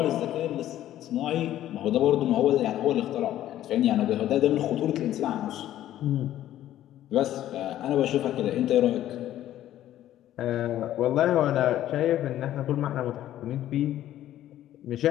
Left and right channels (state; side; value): quieter; right; 12.8 dB